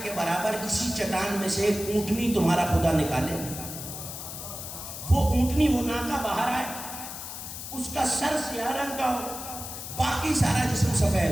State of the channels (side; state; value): left; noise; hiss, 9 dB below the sound